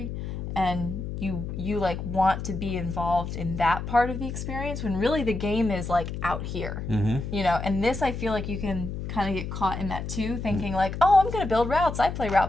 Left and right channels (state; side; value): noise; left; hum, 6 dB below the sound